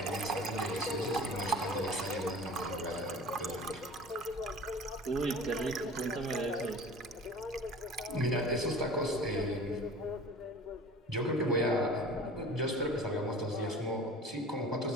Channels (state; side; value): normal; both; correlation 0.41